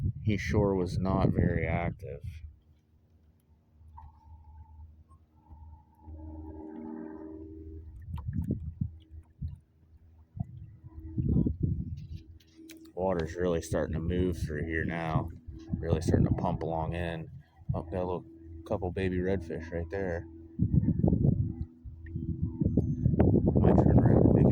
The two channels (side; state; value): both; identical; correlation 1.00